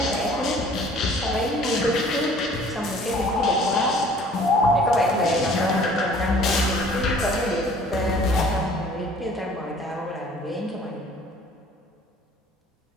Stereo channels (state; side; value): normal; both; correlation 0.53